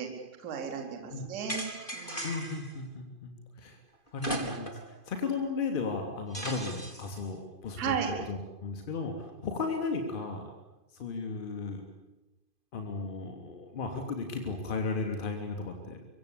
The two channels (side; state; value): right; late; 2.5 ms